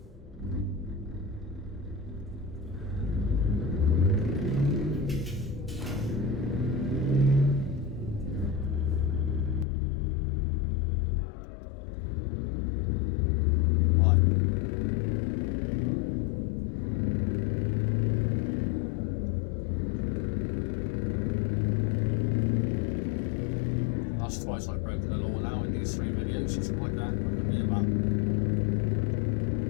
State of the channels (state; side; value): drops out; right; at 9.7 s